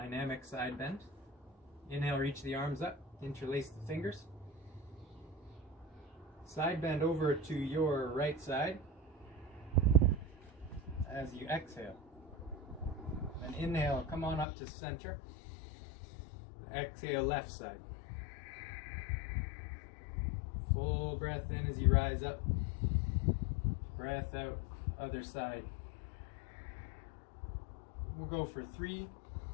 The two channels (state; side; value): drops out; right; at 14.5 s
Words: side bend. Inhale, reach the arms up, interlace the fingers. Side bend over to your right side as you exhale. And inhale, come on up to center. Exhale, left side. Full breath in as you rise up. Breath out, other side. We'll go for 3.